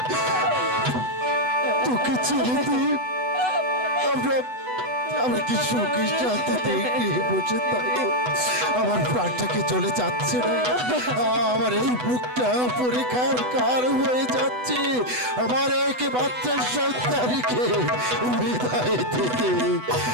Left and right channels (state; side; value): late; left; 8.1 ms